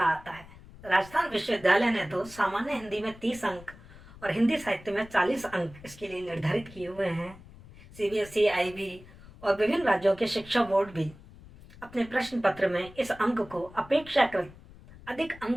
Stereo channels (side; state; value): left; noise; rumble, 20 dB below the sound